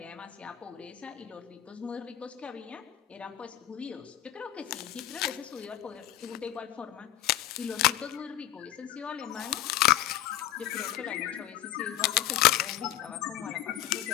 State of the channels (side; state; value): right; quieter; 13.2 dB